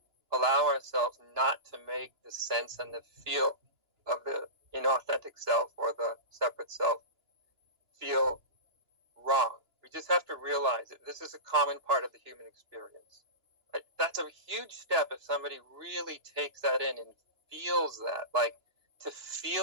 allow ourselves not to make the sense and the feel of the inauthentic self or the separate self feel wrong. We just have to realize that this is a common part of the human experience. Right? That's a huge step if somebody really takes that in and feels that. Like, to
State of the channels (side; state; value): left; late; 2.9 ms